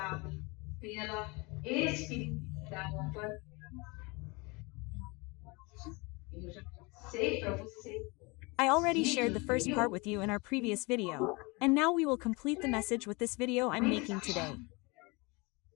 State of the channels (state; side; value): quieter; right; 27.0 dB